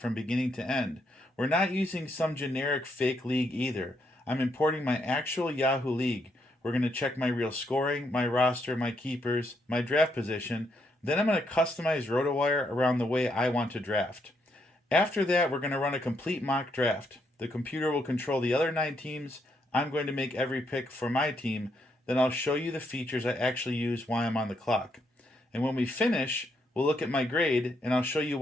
from beginning to end. We're not using some generic fake league either. I'm importing my actual Yahoo league. We're going to check my real scoring, my roster, my keepers, my draft position. Then I'm going to customize RotoWire around the way I want to draft. After that, we're going to run a complete mock draft. The computer will control the other 9 teams. I'm going to make every pick for my team. Then I'll show you the features I actually use while I'm on the clock. And when we finish, we'll look at my grade, and I'll show you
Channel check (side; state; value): both; normal; correlation 0.76